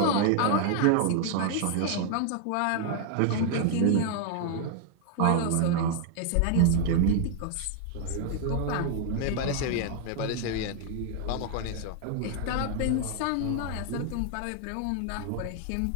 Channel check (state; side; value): different; both; correlation 0.00